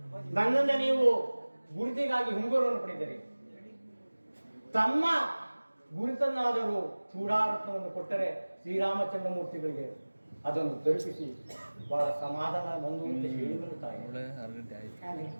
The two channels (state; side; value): inverted; both; correlation -1.00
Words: ನನ್ನಿಂದ ನೀವು ಗುರುತಿಗಾಗಿ ಹುಂಗುರವನ್ನು ಪಡೆದಿರಿ. ತಮ್ಮ ಗುರುತನ್ನಾದರೂ ಚೂಡಾರತ್ನವನ್ನು ಕೊಟ್ಟರೆ ಶ್ರೀರಾಮಚಂದ್ರ ಮೂರ್ತಿಗಳಿಗೆ ಅದನ್ನು ತಲುಪಿಸಿ ಬಹಳ ಸಮಾಧಾನ ಬಂದು ಅಂತ ಹೇಳಿದರು ತಾಯಿ.